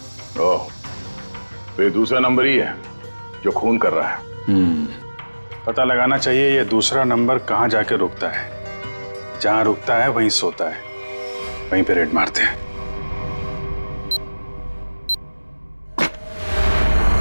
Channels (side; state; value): both; inverted; correlation -1.00